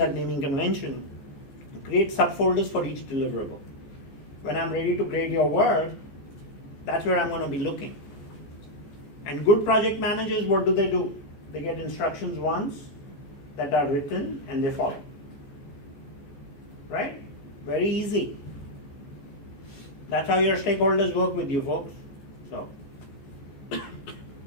naming convention. Create subfolders for each deliverable. When I'm ready to grade your work, that's where I'm going to be looking. And good project managers, what do? They get instructions once that are written and they follow. Right? Very easy. That's how your stakeholders work with you, folks. So,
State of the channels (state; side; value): late; right; 15 ms